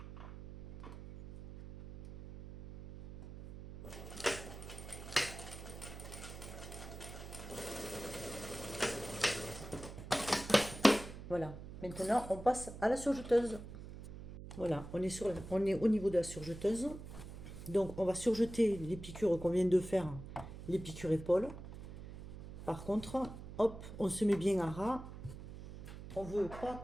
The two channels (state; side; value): noise; right; hum, 12 dB below the sound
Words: Voilà, maintenant on passe à la surjeteuse. Voilà, on est au niveau de la surjeteuse. Donc on va surjeter les piqûres qu'on vient de faire, les piqûres épaules. Par contre, hop, on se met bien à ras. On ne veut pas